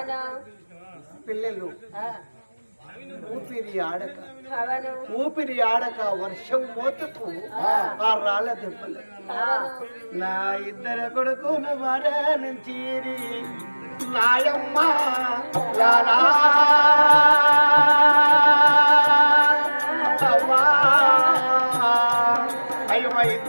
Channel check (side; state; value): both; inverted; correlation -1.00